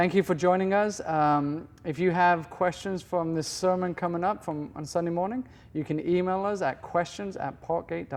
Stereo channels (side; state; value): both; identical; correlation 1.00